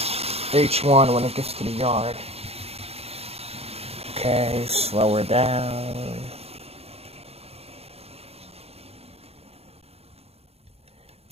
H1 when it gets to the yard. Okay, slow her down.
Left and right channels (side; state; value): left; late; 0.29 ms